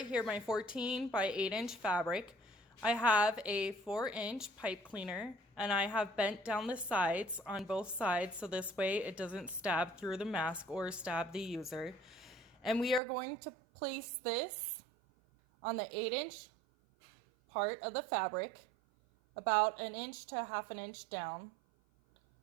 here, my 14 by 8-inch fabric. I have a 4-inch pipe cleaner, and I have bent down the sides on both sides so this way it doesn't stab through the mask or stab the user. And we are going to place this on the 8-inch part of the fabric, about 1 inch to 1/2 inch down.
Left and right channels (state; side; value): drops out; left; at 13.0 s